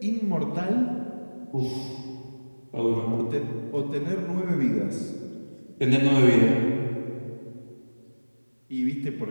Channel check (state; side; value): inverted; both; correlation -1.00